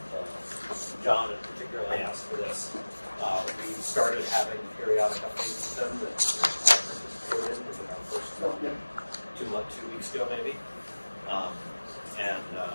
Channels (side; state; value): both; inverted; correlation -1.00